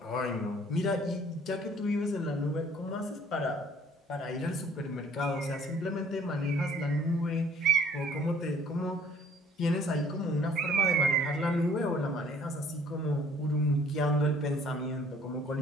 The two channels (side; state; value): both; normal; correlation 0.56